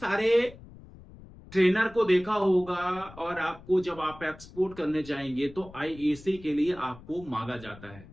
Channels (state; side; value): noise; left; rumble, 19 dB below the sound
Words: ट्रेनर को देखा होगा और आपको जब आप एक्सपोर्ट करने जाएंगे तो आईएसी के लिए आपको मांगा जाता है।